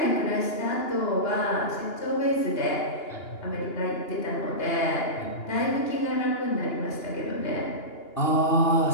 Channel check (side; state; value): right; late; 2.8 ms